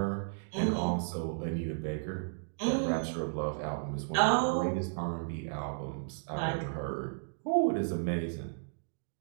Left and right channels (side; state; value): left; silent; digital silence